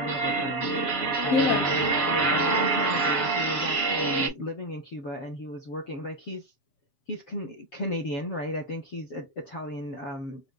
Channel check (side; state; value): right; late; 7.4 ms